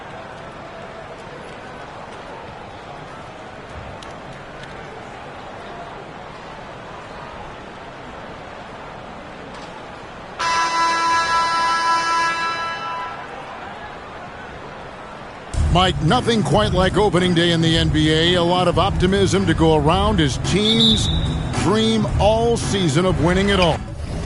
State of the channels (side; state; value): both; identical; correlation 1.00